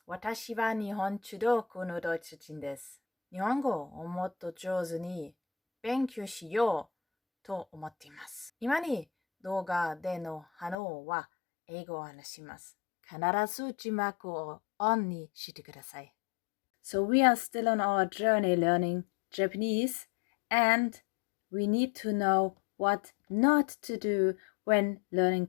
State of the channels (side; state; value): right; drops out; at 10.8 s